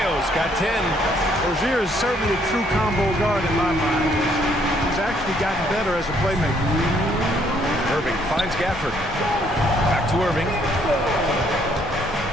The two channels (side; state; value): both; normal; correlation 0.67